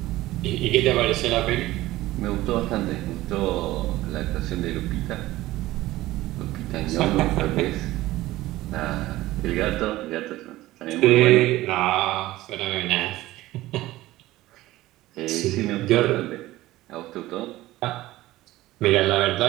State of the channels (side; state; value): left; quieter; 16.9 dB